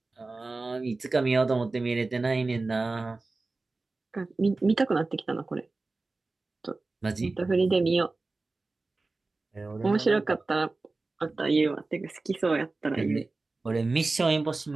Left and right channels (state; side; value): quieter; left; 3.5 dB